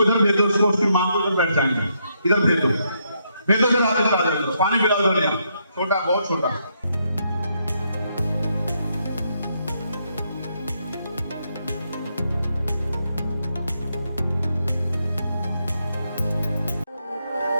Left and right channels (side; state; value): both; inverted; correlation -0.77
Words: इधर भेजो, उसको उसकी मां को इधर बैठ जाएंगे, इधर भेजो, भेजो से वापस आ जाओ। पानी पिलाओ तो नहीं, छोटा, बहुत छोटा।